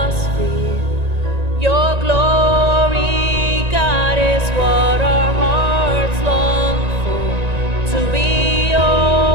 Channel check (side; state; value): left; late; 1.9 ms